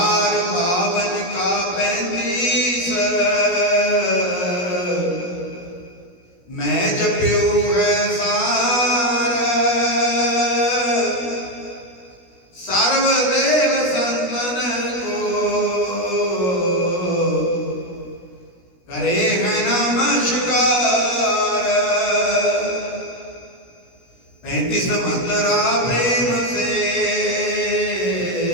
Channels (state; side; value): late; right; 17 ms